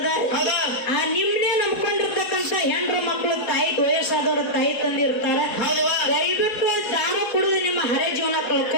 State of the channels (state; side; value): late; right; 4.2 ms